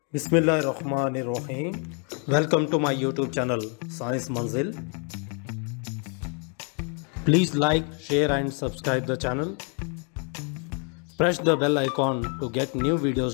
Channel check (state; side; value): quieter; right; 39.6 dB